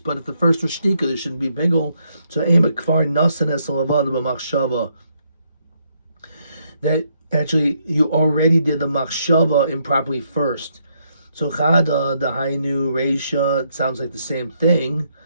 but if the first was shtika, there shouldn't be bigel. So ema kfar nasan es lavana b'machshava. That actually, you already did the machshava improperly first. So chada, the hainu, reisha, it sounds like the same thing.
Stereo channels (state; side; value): inverted; both; correlation -0.75